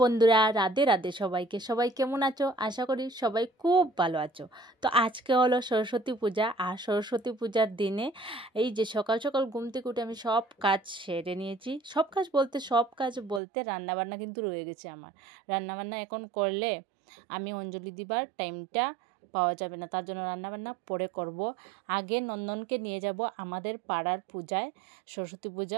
বন্ধুরা, রাধে রাধে সবাইকে। সবাই কেমন আছো? আশা করি সবাই খুব ভালো আছো। তো আজকে হলো সরস্বতী পূজা, আর সরস্বতী পূজার দিনে এই যে সকাল সকাল ঘুম থেকে উঠে আমি সব কাজ সেরে নিয়েছি। সব কাজ বলতে রান্নাবান্না কিন্তু রয়ে গেছে আমার। রান্নাবান্না এখন করলে আমি অঞ্জলি দিবার টাইমটা পাওয়া যাবে না, তার জন্য রান্নাবান্না পরে করব। আগে নন্দনকে নিয়ে যাব আমাদের পাড়ার পূজায়, সরস্বতী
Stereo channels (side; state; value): left; drops out; at 13.4 s